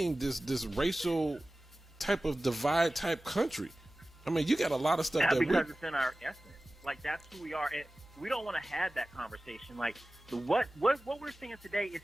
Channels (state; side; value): normal; both; correlation 0.97